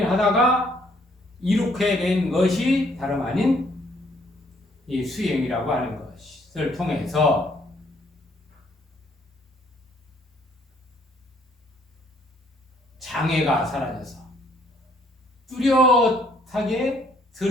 이룩해 된 것이 다름 아닌 이 수행이라고 하는 것을 통해서 장애가 사라져서 뚜렷하게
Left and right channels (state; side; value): normal; both; correlation 0.65